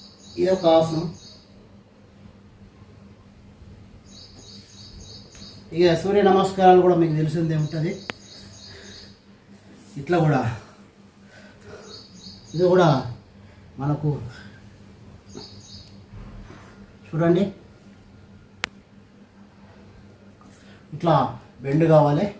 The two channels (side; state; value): both; identical; correlation 1.00